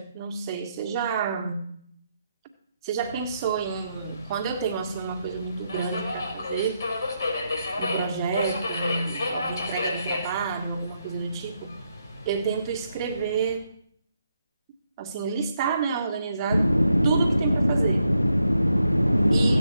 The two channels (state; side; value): inverted; both; correlation -0.80